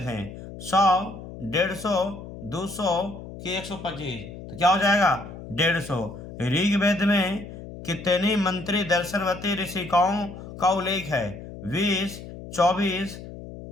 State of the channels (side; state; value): left; noise; hum, 13 dB below the sound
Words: 100, 150, 200, कि 125। तो क्या हो जाएगा 150। ऋग्वेद में कितनी मंत्री दर्शनवती ऋषिकाओं का उल्लेख है, 20, 24,